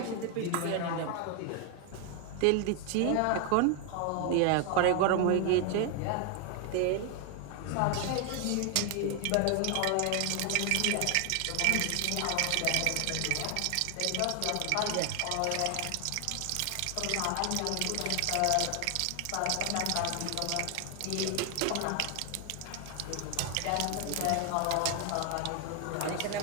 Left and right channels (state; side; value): different; both; correlation 0.00